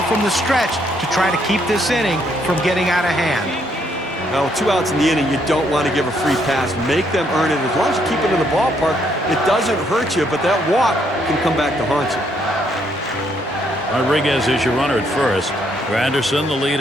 from the stretch to try to keep this inning from getting out of hand. Now, 2 outs in the inning, you don't want to give a free pass. Make them earn it. As long as you keep it in the ballpark, it doesn't hurt you, but that walk can come back to haunt you. Rodriguez is your runner at first. Granderson the lead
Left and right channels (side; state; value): both; normal; correlation 0.72